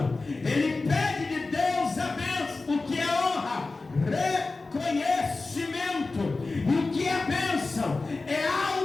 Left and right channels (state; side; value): quieter; right; 3.6 dB